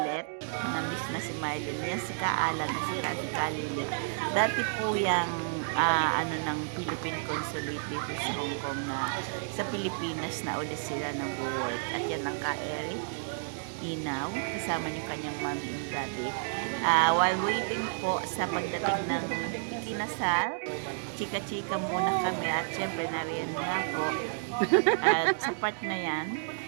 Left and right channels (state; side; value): silent; left; digital silence